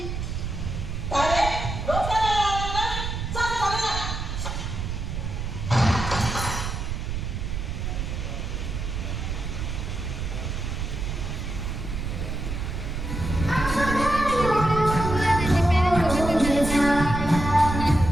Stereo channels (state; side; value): noise; right; rumble, 4 dB below the sound